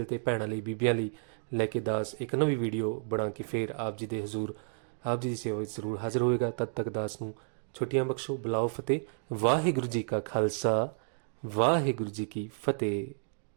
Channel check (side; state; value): left; silent; digital silence